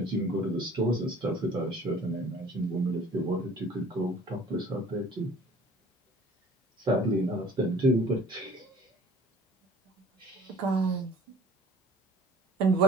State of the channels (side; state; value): both; normal; correlation 0.51